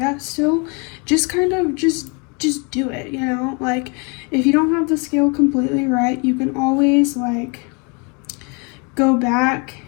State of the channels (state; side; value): quieter; right; 33.1 dB